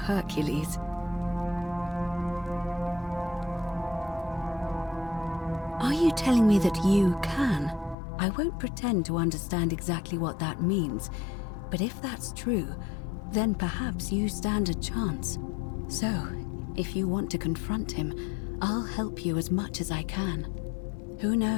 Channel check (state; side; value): drops out; right; at 8.0 s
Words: Are you telling me that you can? I won't pretend to understand exactly what that means, but if that's true, then perhaps you stand a chance. So, if you want to confront him, I'll help you as much as I can. Who